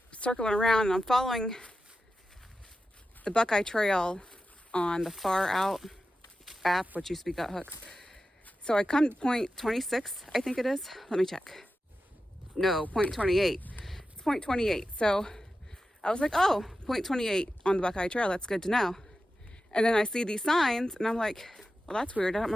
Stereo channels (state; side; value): normal; both; correlation 0.92